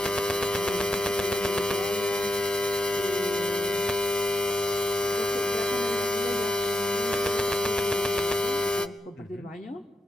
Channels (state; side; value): normal; both; correlation 0.86